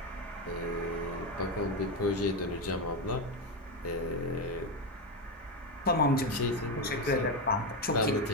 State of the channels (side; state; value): both; normal; correlation 0.12